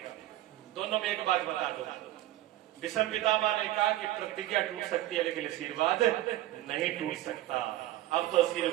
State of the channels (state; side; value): quieter; left; 15.2 dB